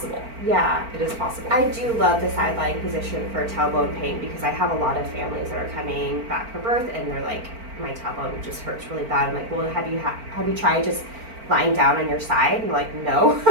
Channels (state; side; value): late; left; 4.4 ms